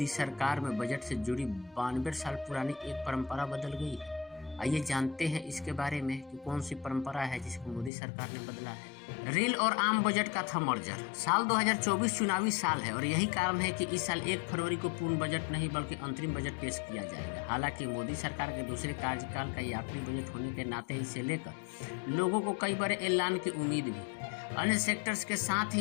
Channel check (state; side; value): drops out; right; at 7.9 s